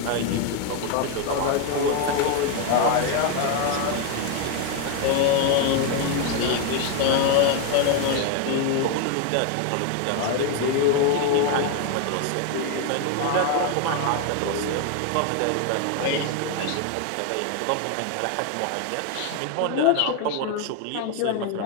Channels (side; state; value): both; different; correlation 0.01